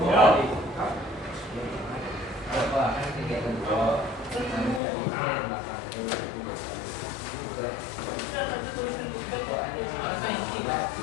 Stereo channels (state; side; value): drops out; right; at 4.8 s